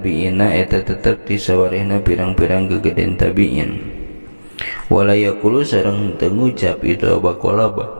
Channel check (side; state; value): both; inverted; correlation -1.00